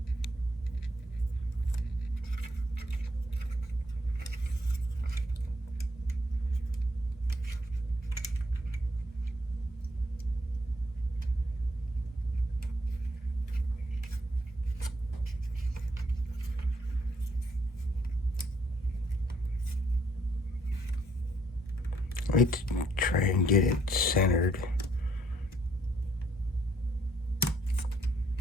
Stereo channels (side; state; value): both; normal; correlation 0.69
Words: Let's try and get it centered.